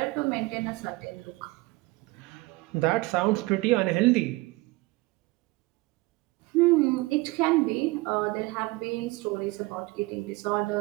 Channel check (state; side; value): quieter; left; 22.1 dB